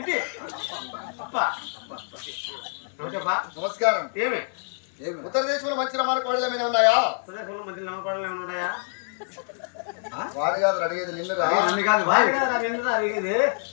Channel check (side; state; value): right; silent; 61 dB below the other